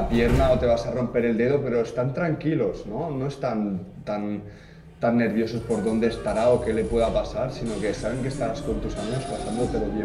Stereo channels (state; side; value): identical; both; correlation 1.00